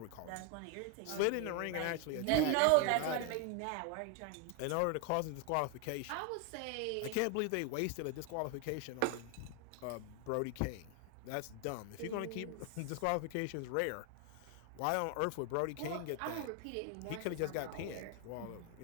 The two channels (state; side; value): different; both; correlation 0.01